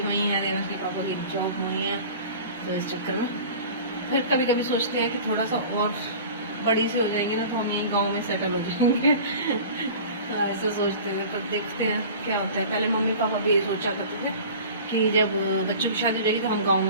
वहीं है, देवांश के पापा की जॉब वहीं है, तो इस चक्कर में फिर कभी कभी सोचते हैं कि थोड़ा सा और बड़ी से हो जाएंगे ना तो हम यहीं गाँव में सेटल हो जाएंगे ऐसा सोचते थे, पर देखते हैं क्या होता है। पहले मम्मी पापा भी ये सोचा करते थे कि जब बच्चों की शादी हो जाएगी तो हम गांव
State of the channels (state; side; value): inverted; both; correlation -0.40